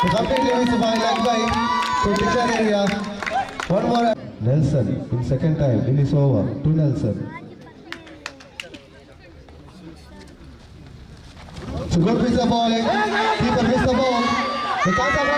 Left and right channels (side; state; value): both; identical; correlation 1.00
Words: completely missed by leg by to declare area. One more. Nelson in second time in his over to Nelson. So good piece of bowling. Keeper missed the ball. The chance of